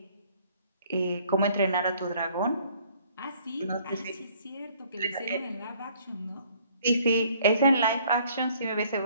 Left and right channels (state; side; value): inverted; both; correlation -0.60